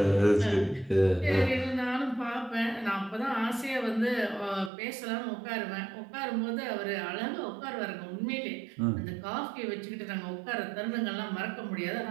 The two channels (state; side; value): drops out; left; at 4.7 s